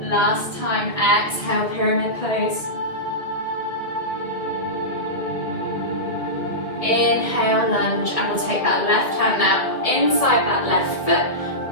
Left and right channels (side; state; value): right; late; 1.6 ms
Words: Last time, exhale, pyramid pose. Inhale, lunge, and we'll take that left hand now inside that left foot.